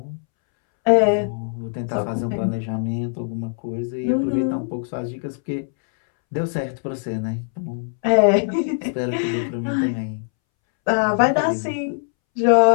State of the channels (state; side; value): silent; right; 64 dB below the other